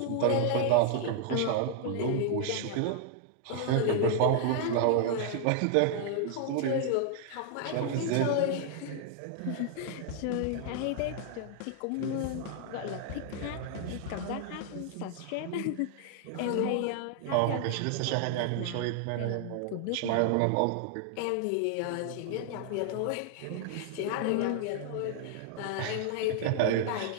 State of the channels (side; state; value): both; different; correlation -0.01